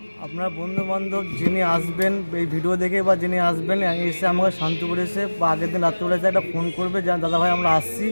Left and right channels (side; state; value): both; inverted; correlation -1.00